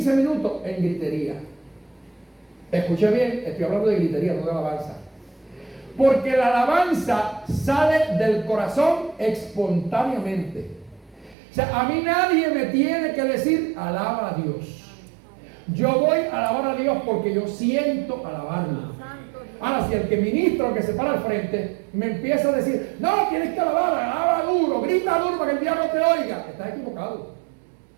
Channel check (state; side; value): drops out; left; at 11.4 s